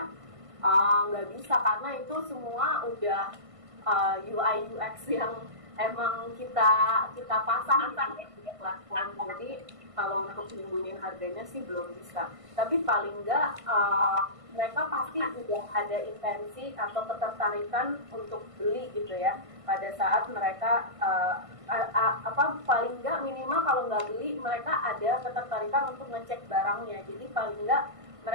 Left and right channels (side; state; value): left; late; 1.5 ms